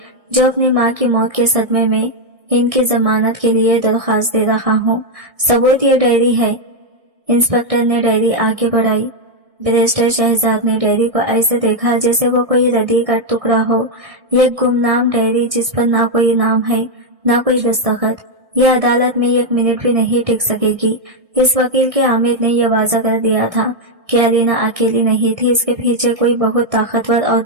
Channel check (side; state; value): left; late; 1.6 ms